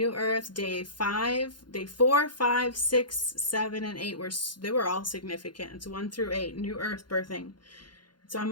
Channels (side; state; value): right; late; 0.71 ms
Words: Earth, day 4, 5, 6, 7, and 8 they were all significant. It's 1 through 8. New Earth birthing. It's on